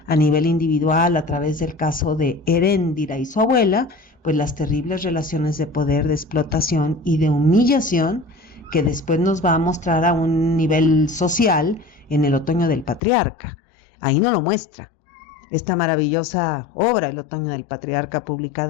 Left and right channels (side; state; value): right; drops out; at 13.0 s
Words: a nivel individual, a través del caso de Heréndira y su abuela, pues las terribles relaciones de poder, de explotación y de humillación que después nos va a mostrar a un nivel social en El otoño del patriarca. Ahí no lo muestra. Esta maravillosa obra, El otoño del patriarca,